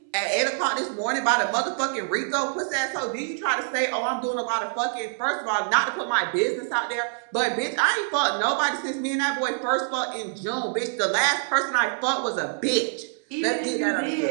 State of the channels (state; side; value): silent; left; 61 dB below the other